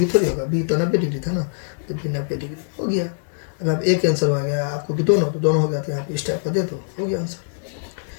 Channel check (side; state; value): right; silent; 64 dB below the other